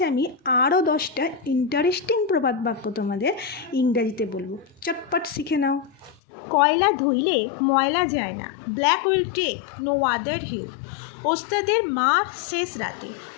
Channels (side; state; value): right; drops out; at 6.2 s